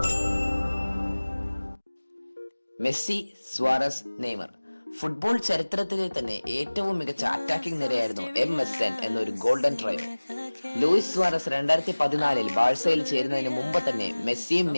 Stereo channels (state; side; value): inverted; both; correlation -1.00